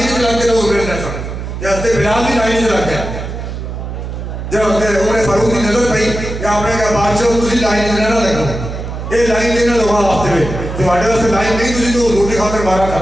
سے لگ کے لوگ ابھرے نہ سن تے حضرت بلال بھی لائن سے لگ گیا جب حضرت عمر فاروق کی نظر پئی کہ آپ نے کہا بادشاہ تسی لائن سے نہ لگو اے لائن سے نہ لگا واسطے میں تواڈے واسطے لائن نہیں تسی تو حضور کی خاطر مارا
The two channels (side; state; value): right; noise; hum, 7 dB below the sound